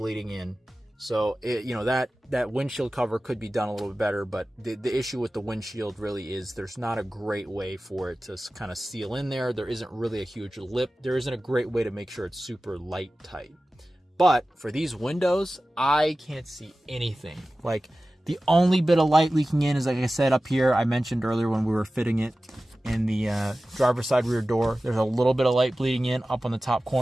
in. So that windshield cover could be done a little bit better, but the issue with the windshield really is there's not a great way for it to kind of seal in there. There isn't really a huge lip. There isn't a great way to make sure it's super light tight. But for these windows, I can't see anything. Like, the only bit of light leaking in is, like I said, up here. I mentioned earlier when we were fitting it in the driver's side rear door, there's a little bit of light bleeding in up on the top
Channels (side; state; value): both; normal; correlation 0.96